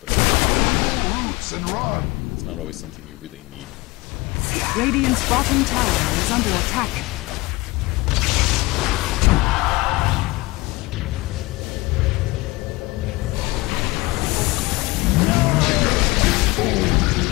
it's not always something you really need. Radiant's bottom tower is under attack.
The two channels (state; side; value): quieter; right; 21.7 dB